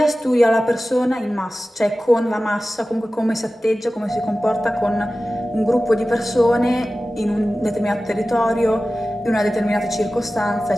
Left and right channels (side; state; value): both; normal; correlation 0.95